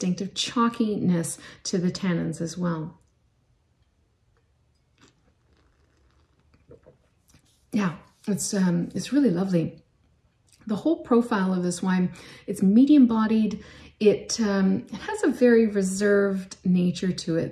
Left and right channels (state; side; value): identical; both; correlation 1.00